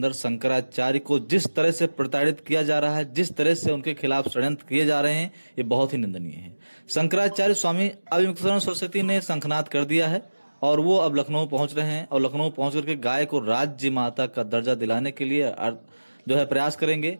शंकराचार्य को जिस तरह से प्रताड़ित किया जा रहा है, जिस तरह से उनके खिलाफ षड्यंत्र किए जा रहे हैं, ये बहुत ही निंदनीय है। शंकराचार्य स्वामी अविमुक्तानंद सरस्वती ने शंखनाद कर दिया है और वो अब लखनऊ पहुंच रहे हैं और लखनऊ पहुंच करके गाय को राज्य माता का दर्जा दिलाने के लिए जो है प्रयास करेंगे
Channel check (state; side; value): inverted; both; correlation -1.00